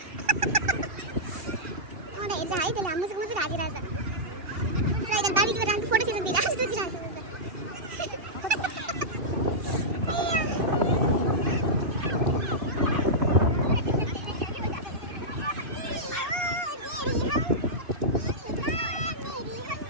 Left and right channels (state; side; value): late; left; 2.7 ms